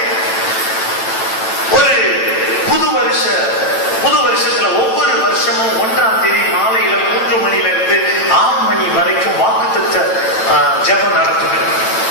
ஒரு புது வருஷத்துல ஒவ்வொரு வருஷமும் 1ஆம் தேதி மாலையில 3 மணியிலிருந்து 6 மணி வரைக்கும் வாக்குத்தத்த ஜெபம் நடக்குது.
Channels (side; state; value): right; late; 9.1 ms